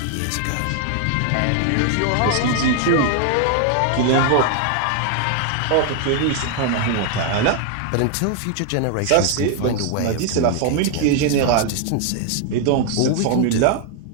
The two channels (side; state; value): both; different; correlation 0.00